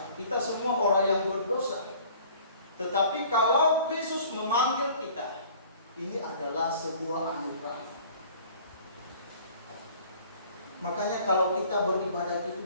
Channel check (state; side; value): inverted; both; correlation -0.51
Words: Kita semua orang yang berdosa. Tetapi kalau Kristus memanggil kita, ini adalah sebuah anugerah. Makanya kalau kita beribadah